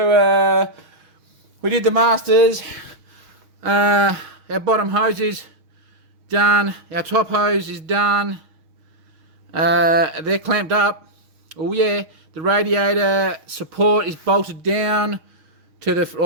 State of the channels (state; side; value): late; left; 6.4 ms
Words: we did the masters. Our bottom hose is done. Our top hose is done. They're clamped up. Oh yeah, the radiator support is bolted down to